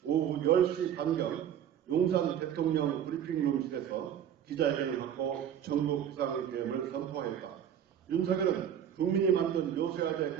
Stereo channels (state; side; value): quieter; left; 9.4 dB